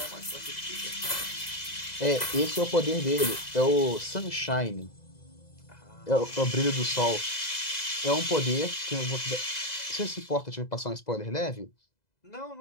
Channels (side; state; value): right; late; 2.0 ms